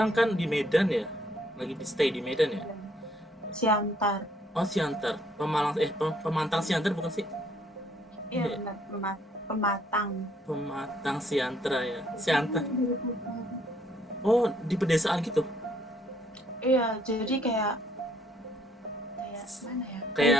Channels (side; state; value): both; normal; correlation 0.67